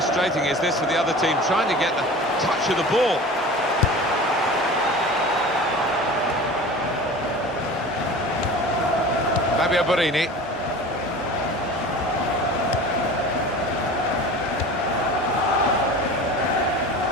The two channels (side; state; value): both; normal; correlation 0.37